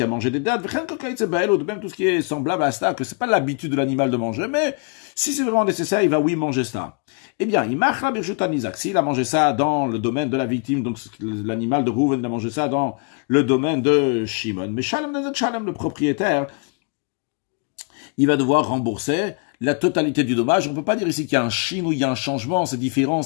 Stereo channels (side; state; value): right; quieter; 36.5 dB